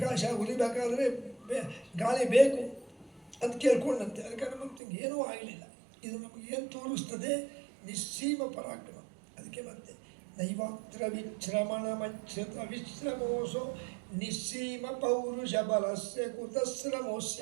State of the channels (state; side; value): drops out; left; at 4.8 s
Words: ಉರಿಬೇಕಾದ್ರೆ ಗಾಳಿ ಬೇಕು ಅಂತ ಕೇಳ್ಕೊಂಡಂತೆ. ಅದಕ್ಕೆ ಹನುಮಂತಂಗೆ ಏನೂ ಆಗಲಿಲ್ಲ. ಇದು ನಮಗೇನು ತೋರಿಸ್ತದೆ? ನಿಸ್ಸೀಮ ಪರಾಕ್ರಮ. ಅದಕ್ಕೆ ಮತ್ತೆ ನೈವಾತ್ರ ವಿಶ್ರಮಣ ಮಚ್ಛತ ವಿಶ್ರಮೋಸೋ ನಿಸ್ಸೀಮ ಪೌರುಷ ಬಲಸ್ಯ ಕುತಶ್ರಮೋಸ್ಯ.